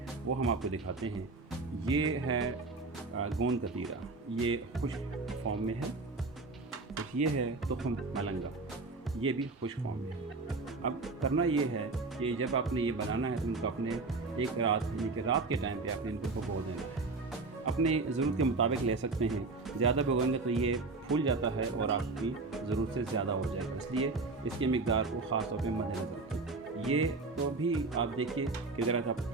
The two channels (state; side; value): quieter; left; 3.7 dB